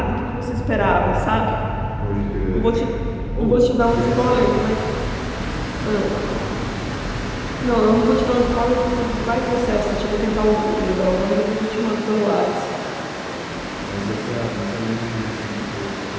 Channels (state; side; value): identical; both; correlation 1.00